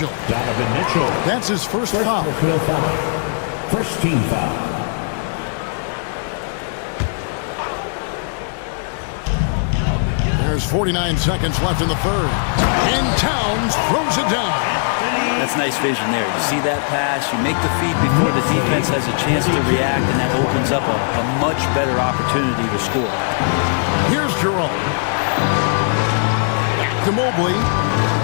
Donovan Mitchell. That's his first foul. First team foul. There's 49 seconds left in the third. And Towns throws it down. That's nice vision there. You see that pass, you make the feed before the defense has a chance to react, and that opens up a much better opportunity to score. Here's Jerome. Back to Mobley.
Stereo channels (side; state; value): right; silent; 67 dB below the other